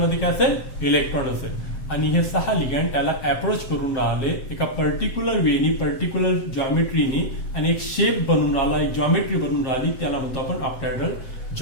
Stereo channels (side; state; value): right; late; 7.7 ms